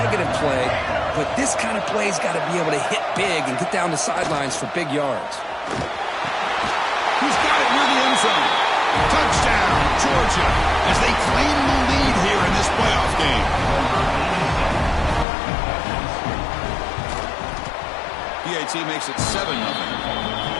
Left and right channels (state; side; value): drops out; right; at 15.2 s